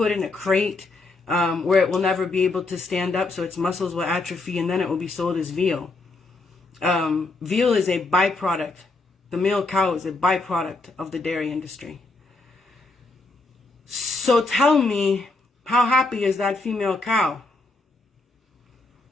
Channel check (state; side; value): quieter; right; 3.3 dB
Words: in a crate where it will never be able to stand up, so its muscles will atrophy, and then it will be sold as veal. Veal is a byproduct. The male cow is a byproduct of the dairy industry. So tell me, how happy is that female cow?